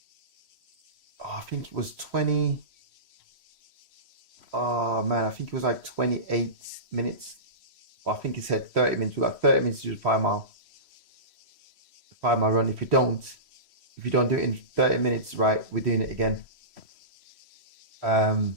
I think it was 20. Oh man, I think it was like 28 minutes. Well, I think it said 30 minutes. We got 30 minutes to do the 5 mile. The 5 mile run. If you don't do it in 30 minutes, right, we're doing it again.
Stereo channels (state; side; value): late; left; 3.1 ms